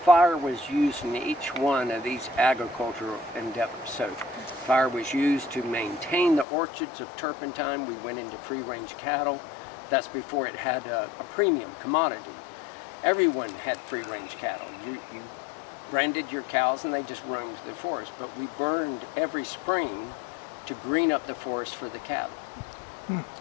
was used in each one of these agricultural endeavors. So fire was used to maintain the orchards of turpentine. We went into free-range cattle. That's before it had a premium commodity. Everyone had free-range cattle. You branded your cows and they just roamed the forest. But we burned every spring to green up the forest for the cattle.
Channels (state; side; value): drops out; right; at 6.5 s